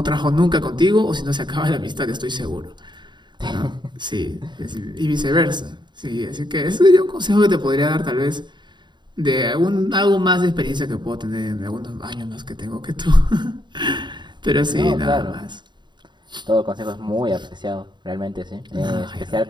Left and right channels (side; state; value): left; late; 0.22 ms